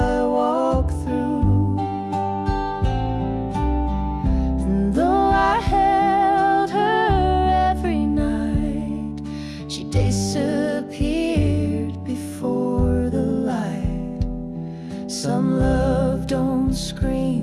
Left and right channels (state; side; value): identical; both; correlation 1.00